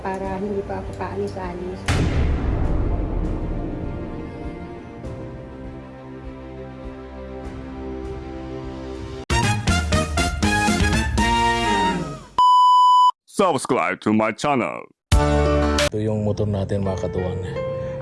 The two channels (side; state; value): both; identical; correlation 1.00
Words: hindi pa ako paalis-alis. Subscribe to my channel. Ito yung motor natin mga katuwang.